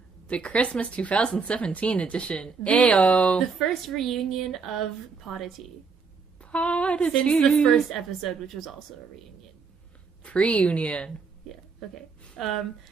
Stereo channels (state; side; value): quieter; left; 5.0 dB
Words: The Christmas 2017 edition. Ayo! The first reunion of Podditea. Podditea. Since the first episode, which was also a reunion. Pre-union. Yeah, okay.